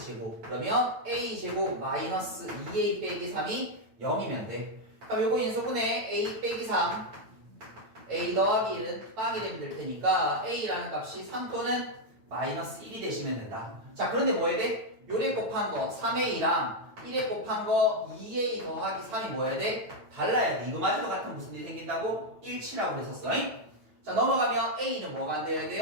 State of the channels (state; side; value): late; left; 9.1 ms